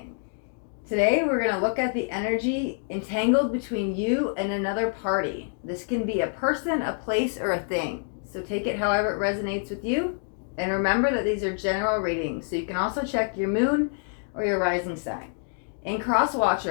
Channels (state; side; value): silent; right; 60 dB below the other